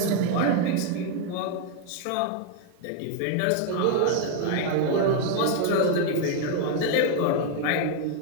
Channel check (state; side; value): different; both; correlation 0.00